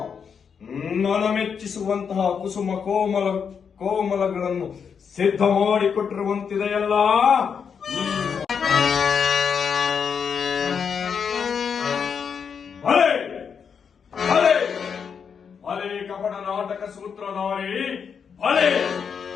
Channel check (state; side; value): quieter; right; 6.7 dB